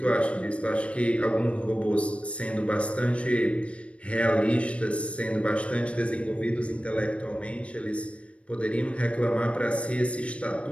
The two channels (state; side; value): late; right; 0.061 ms